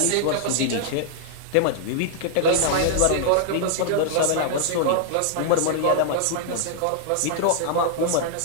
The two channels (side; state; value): both; different; correlation -0.01